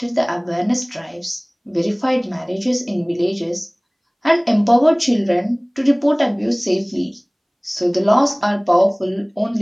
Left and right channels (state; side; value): identical; both; correlation 1.00